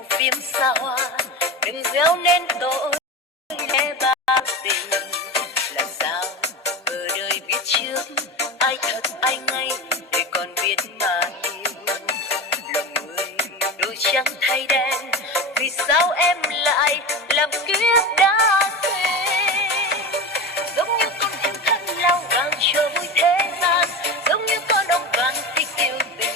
phim xa hoa, đừng gieo nên tội lẽ ba tình. Làm sao ở đời biết trước ai thật ai ngay, để còn biết mà yêu. Lòng người đôi trắng thay đen, vì sao em lại làm kiếp đã quên. Giống như con thiên thân lao vàng cho vui thế gian, giống như con ong vàng thích yêu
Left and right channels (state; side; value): normal; both; correlation 0.25